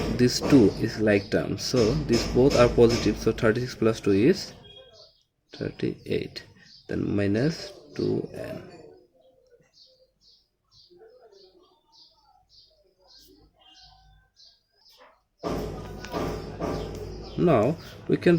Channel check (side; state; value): both; identical; correlation 1.00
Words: this 2 is like terms, so these both are positive, so 36 plus 2 is 38, then minus 2n. Now we can